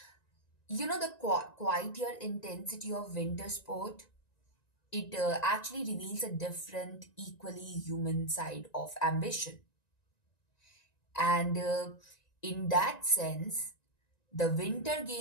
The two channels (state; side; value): late; right; 1.9 ms